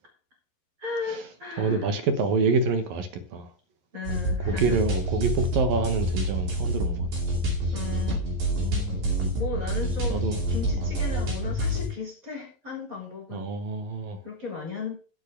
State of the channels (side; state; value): left; late; 11 ms